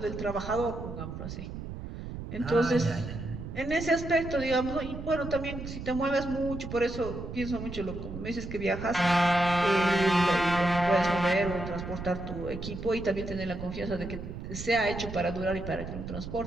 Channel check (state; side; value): noise; right; rumble, 8 dB below the sound